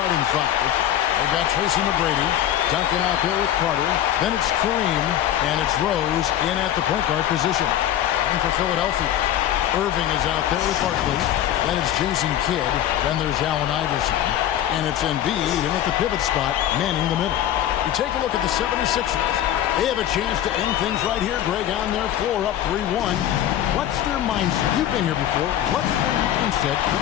five. They've got Tracy McGrady, Duncan out there with Carter. Then it's Kareem, and it's Rose in at the point guard position. And for Philadelphia, Irving is out there with Barkley. Then it's Jason Kidd. Then there's Allen Iverson. And it's Embiid in at the pivot spot, manning the middle. You take a look at the 76ers. They have a chance to end things right here, Greg, on their floor, up 3-1. What's their mindset? You've been here before. What's their mindset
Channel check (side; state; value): right; quieter; 11.5 dB